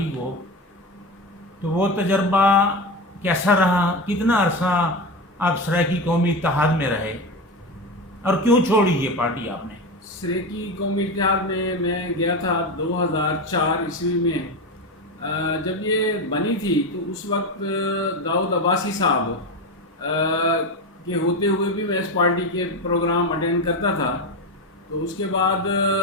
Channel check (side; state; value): both; normal; correlation 0.19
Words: کو۔ تو وہ تجربہ کیسا رہا؟ کتنا عرصہ آپ سرائیکی قومی اتحاد میں رہے، اور کیوں چھوڑی یہ پارٹی آپ نے؟ سرائیکی قومی اتحاد میں گیا تھا 2004 عیسوی میں۔ جب یہ بنی تھی تو اس وقت داؤد عباسی صاحب کے ہوتے ہوئے بھی میں اس پارٹی کے پروگرام اٹینڈ کرتا تھا۔ تو اس کے بعد